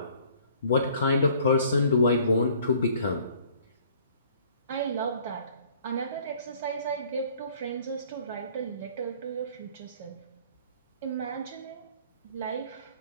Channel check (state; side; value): inverted; both; correlation -0.55